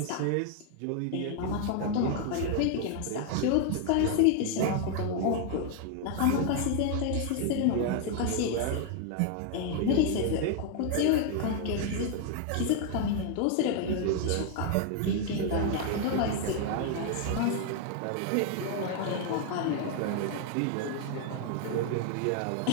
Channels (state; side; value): different; both; correlation 0.00